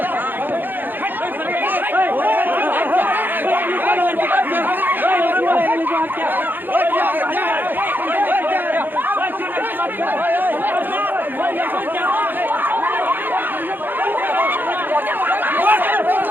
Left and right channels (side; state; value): left; late; 0.092 ms